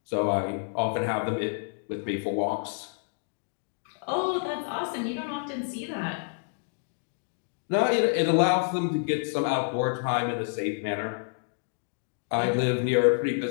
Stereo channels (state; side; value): silent; right; digital silence